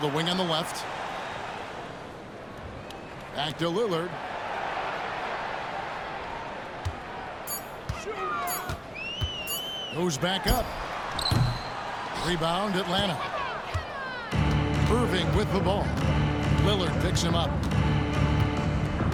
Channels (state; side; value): identical; both; correlation 1.00